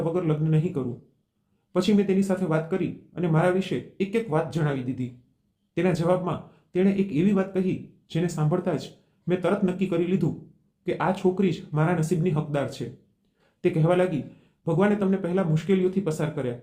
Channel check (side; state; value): both; identical; correlation 1.00